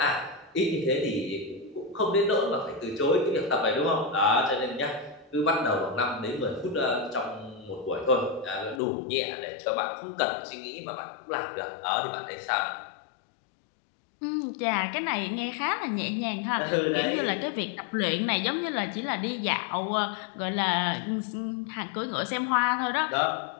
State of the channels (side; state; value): right; drops out; at 8.8 s